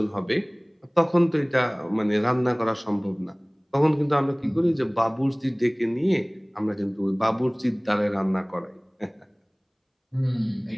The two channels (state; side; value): identical; both; correlation 1.00